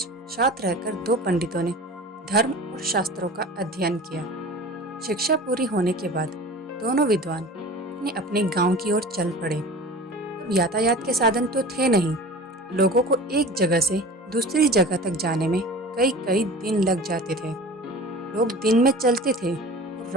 साथ रहकर दो पंडितों ने धर्म और शास्त्रों का अध्ययन किया। शिक्षा पूरी होने के बाद दोनों विद्वान अपने अपने गांव की ओर चल पड़े। अब यातायात के साधन तो थे नहीं। लोगों को एक जगह से दूसरी जगह तक जाने में कई कई दिन लग जाते थे। लोग दिन में चलते थे और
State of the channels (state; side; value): normal; both; correlation 0.38